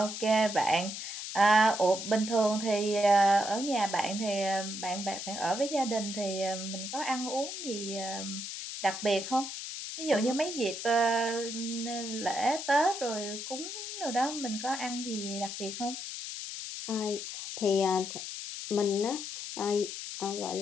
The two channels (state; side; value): noise; left; hiss, 7 dB below the sound